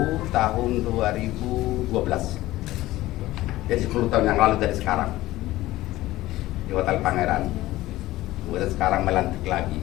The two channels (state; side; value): quieter; right; 16.8 dB